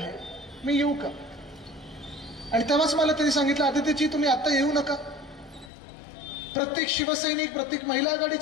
मी येऊ का? आणि तेव्हाच मला त्यांनी सांगितलं, आदित्यजी तुम्ही आता येऊ नका. प्रत्येक शिवसैनिक, प्रत्येक महिला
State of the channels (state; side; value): drops out; right; at 5.7 s